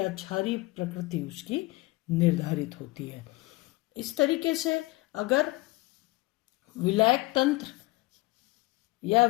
क्षारीय प्रकृति उसकी निर्धारित होती है। इस तरीके से अगर विलायक तंत्र या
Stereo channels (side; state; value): right; quieter; 21.4 dB